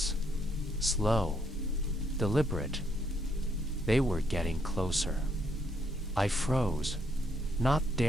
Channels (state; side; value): normal; both; correlation 0.73